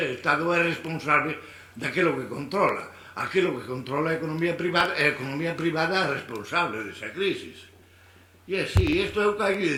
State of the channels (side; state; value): both; identical; correlation 1.00